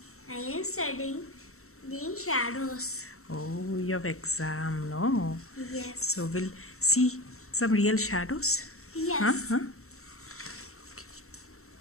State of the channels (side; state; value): right; late; 0.63 ms